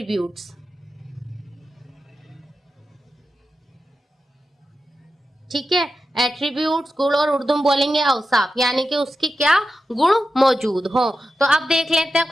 ठीक है। एट्रीब्यूट्स गुण और उर्दू में बोलेंगे औसाफ, यानी कि उसके क्या गुण मौजूद हो। तो अब देख लेते हैं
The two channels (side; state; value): both; normal; correlation 0.90